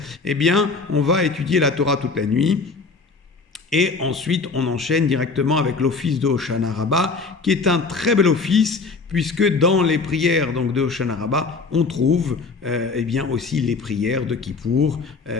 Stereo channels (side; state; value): right; quieter; 4.3 dB